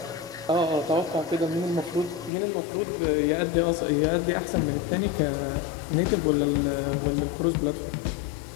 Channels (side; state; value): right; drops out; at 2.3 s